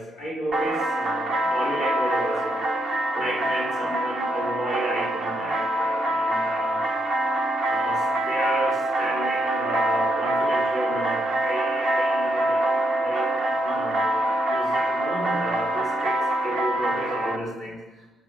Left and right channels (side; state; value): both; normal; correlation 0.79